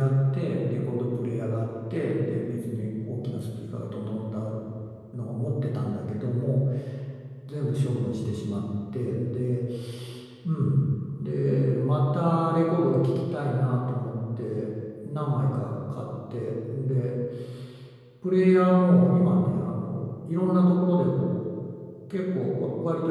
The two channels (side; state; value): both; identical; correlation 1.00